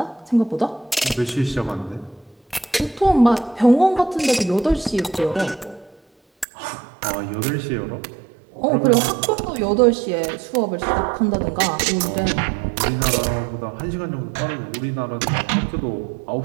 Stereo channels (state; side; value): drops out; left; at 6.5 s